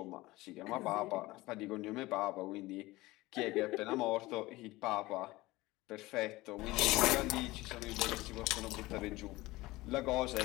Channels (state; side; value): quieter; right; 19.6 dB